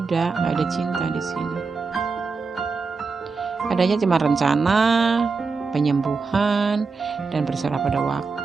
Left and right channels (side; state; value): left; quieter; 4.5 dB